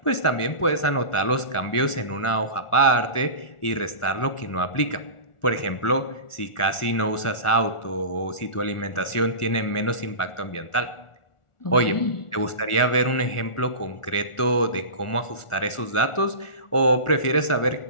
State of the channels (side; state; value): right; late; 1.4 ms